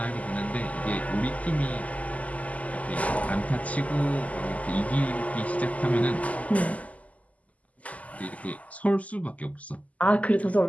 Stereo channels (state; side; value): late; right; 0.072 ms